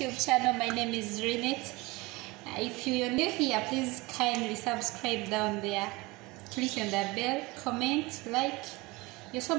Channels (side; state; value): left; quieter; 23.2 dB